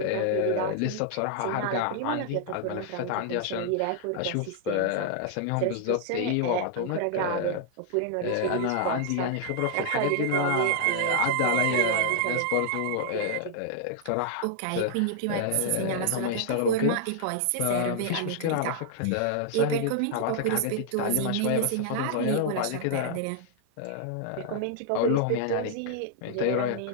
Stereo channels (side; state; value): both; different; correlation -0.01